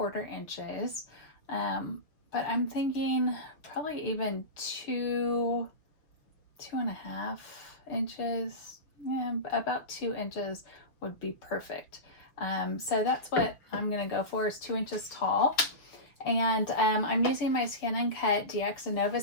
inches. But I'm thinking probably even 2.5 inches, yeah, about 2 inches would be perfect. So that's what I'm gonna go for, is 2 inches tall. And I'm using my ScanNCut DX and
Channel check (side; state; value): right; late; 6.0 ms